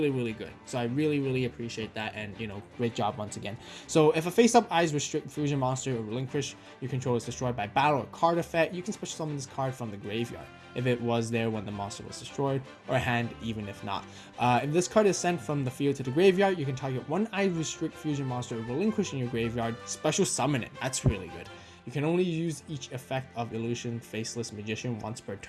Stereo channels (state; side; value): identical; both; correlation 1.00